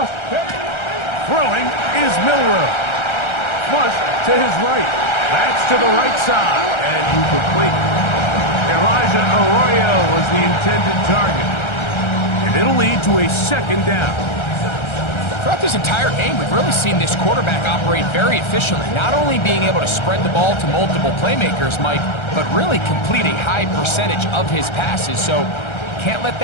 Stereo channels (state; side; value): late; right; 1.3 ms